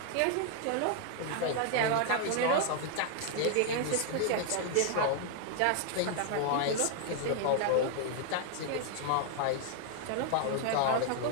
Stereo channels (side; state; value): both; different; correlation 0.00